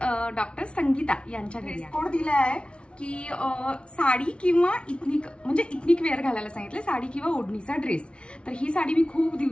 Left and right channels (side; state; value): right; late; 0.059 ms